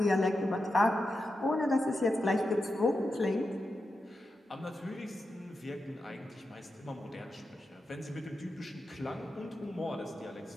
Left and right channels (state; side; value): normal; both; correlation 0.89